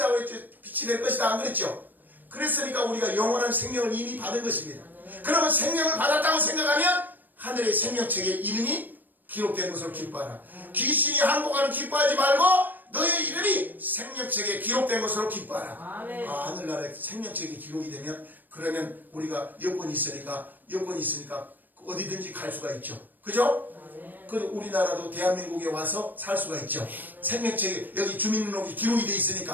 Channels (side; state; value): left; late; 0.089 ms